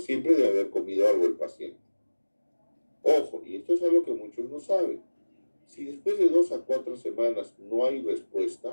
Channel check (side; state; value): both; inverted; correlation -1.00